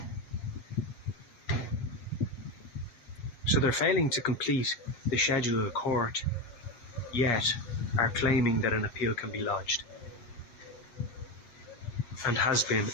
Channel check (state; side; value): late; right; 8.4 ms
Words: So they're failing to complete the schedule of the court, yet are claiming that an appeal can be lodged, and has been